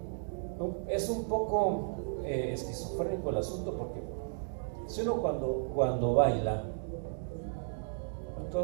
Es un poco esquizofrénico el asunto, porque si uno cuando baila,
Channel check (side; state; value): left; silent; digital silence